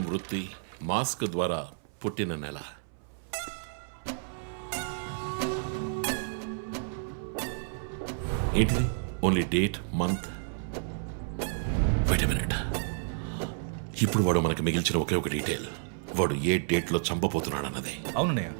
వృత్తి, మాస్క్ ద్వారా పుట్టిన నెల. ఏంటిది? Only date, month. Wait a minute. ఇప్పుడు వాడు మనకి మిగిల్చిన ఒకే ఒక డీటెయిల్, వాడు ఏ డేట్లో చంపబోతున్నాడు అన్నదే. అవునన్నయ్య,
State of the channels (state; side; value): silent; left; 57 dB below the other